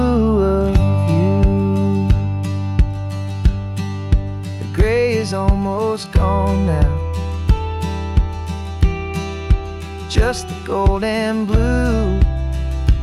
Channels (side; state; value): both; identical; correlation 1.00